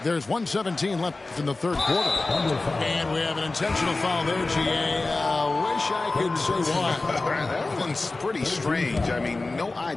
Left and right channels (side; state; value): right; quieter; 3.3 dB